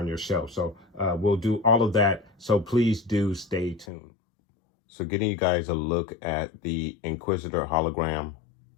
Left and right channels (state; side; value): drops out; right; at 3.9 s